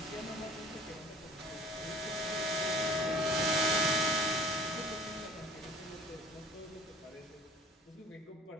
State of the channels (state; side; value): normal; both; correlation 0.48